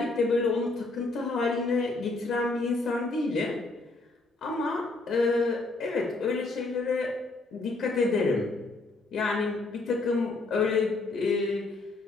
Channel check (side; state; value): right; quieter; 3.3 dB